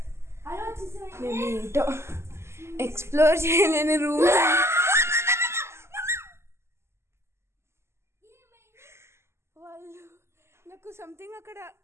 మేము ఏంటో ఎక్స్ప్లోర్ చేయలేని రూమ్. వాళ్ళు నాకు సంథింగ్ అక్కడ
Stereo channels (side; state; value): left; late; 0.13 ms